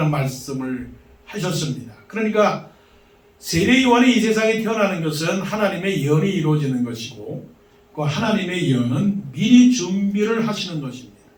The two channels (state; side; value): identical; both; correlation 1.00